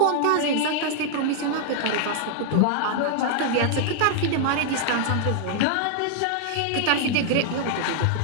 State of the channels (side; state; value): both; different; correlation 0.00